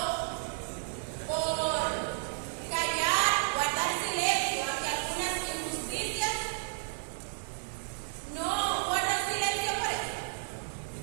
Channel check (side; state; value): left; silent; digital silence